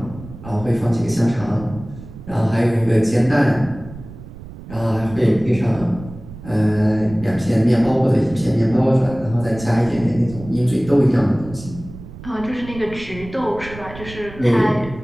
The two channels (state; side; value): noise; right; rumble, 15 dB below the sound